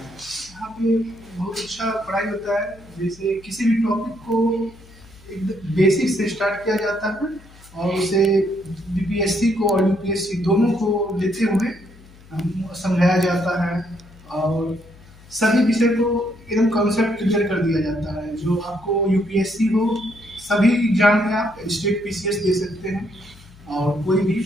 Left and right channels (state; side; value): noise; left; hum, 23 dB below the sound